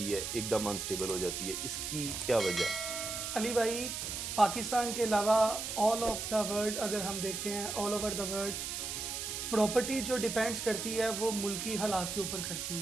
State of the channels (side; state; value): right; noise; hiss, 4 dB below the sound